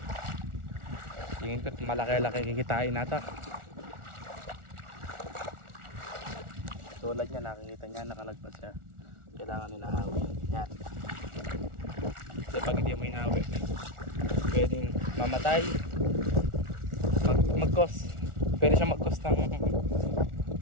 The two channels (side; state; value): left; late; 1.4 ms